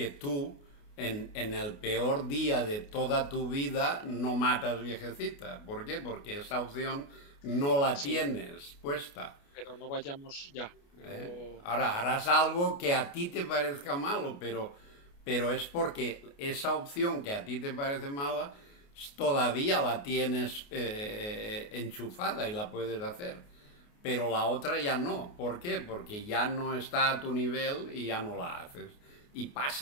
tú en el peor día de toda tu vida no matas viejecita. ¿Por qué? Porque esa opción no la tienes puesta. Pero no vayamos ya. Ahora harás algo que a ti te parezca malo, pero es porque esa opción que a ti te parece mala todavía la tienes enchufada y la puedes hacer. Pero la otra ya no. ¿Por qué? Porque ya no está a tu nivel y ya no la haces. Y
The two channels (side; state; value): right; late; 28 ms